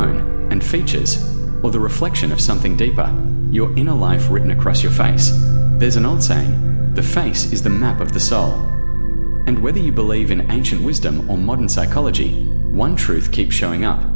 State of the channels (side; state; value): both; inverted; correlation -1.00